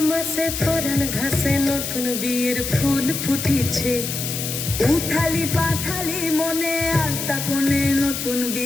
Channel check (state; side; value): noise; left; hiss, 4 dB below the sound